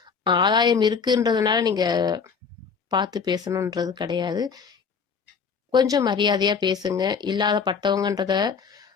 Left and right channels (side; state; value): right; quieter; 5.8 dB